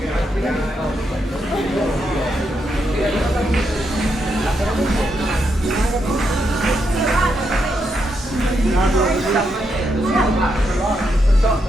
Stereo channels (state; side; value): normal; both; correlation 0.81